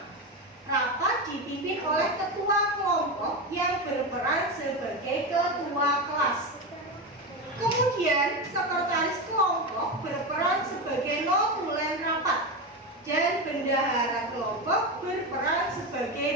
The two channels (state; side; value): normal; both; correlation 0.17